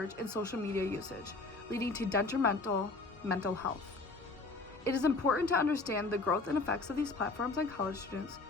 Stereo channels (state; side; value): quieter; right; 3.5 dB